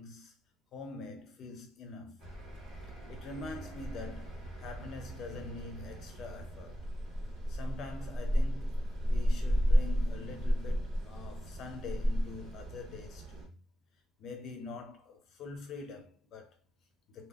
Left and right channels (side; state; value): both; normal; correlation 0.92